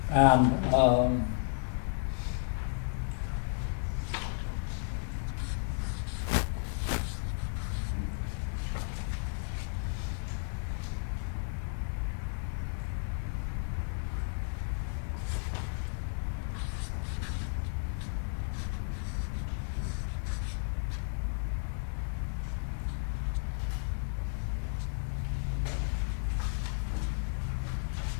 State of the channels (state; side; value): silent; right; digital silence